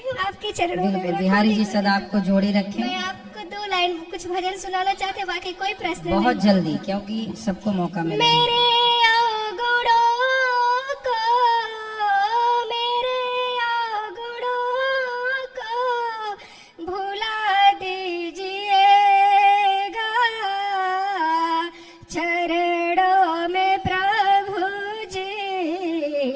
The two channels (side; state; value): both; identical; correlation 1.00